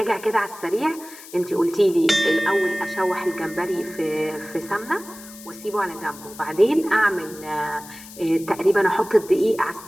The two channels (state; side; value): noise; left; hiss, 17 dB below the sound